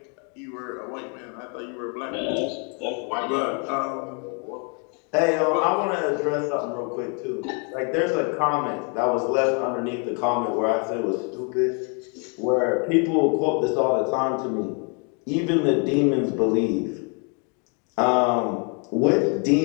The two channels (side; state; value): right; quieter; 37.5 dB